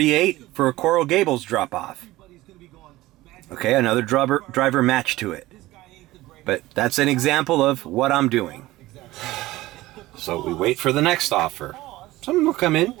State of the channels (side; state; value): left; quieter; 17.7 dB